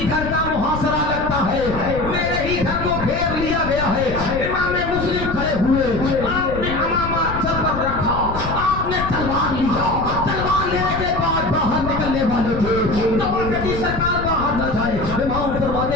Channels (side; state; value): left; noise; rumble, 7 dB below the sound